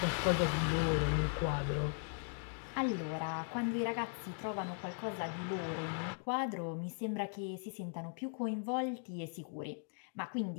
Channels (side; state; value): right; silent; 52 dB below the other